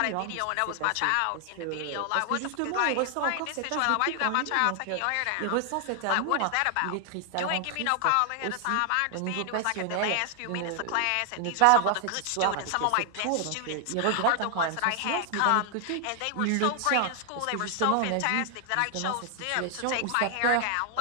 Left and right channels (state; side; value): different; both; correlation 0.00